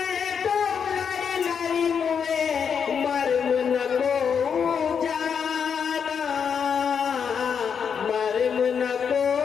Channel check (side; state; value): right; quieter; 6.9 dB